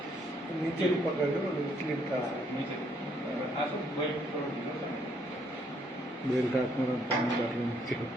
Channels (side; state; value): both; normal; correlation 0.69